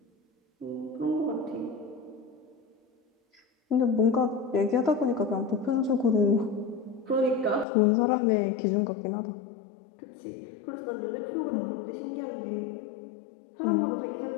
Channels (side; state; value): right; drops out; at 7.7 s